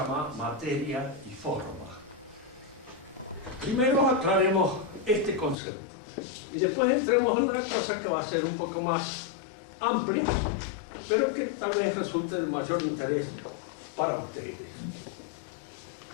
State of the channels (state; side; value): drops out; right; at 5.6 s